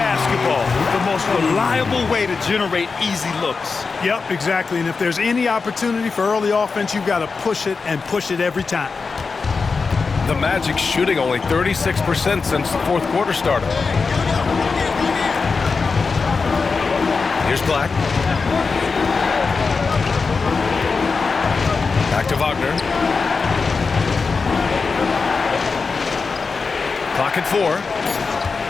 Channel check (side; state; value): right; quieter; 4.7 dB